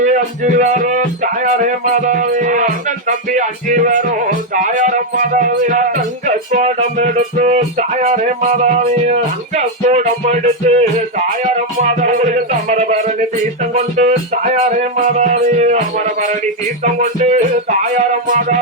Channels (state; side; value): normal; both; correlation 0.02